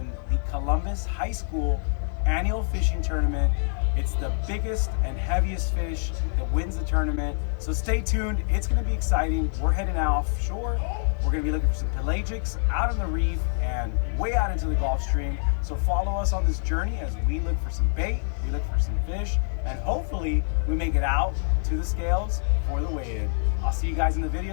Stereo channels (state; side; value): silent; right; digital silence